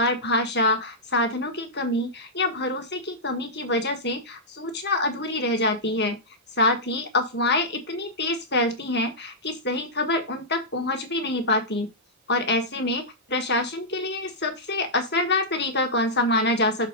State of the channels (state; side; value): normal; both; correlation -0.11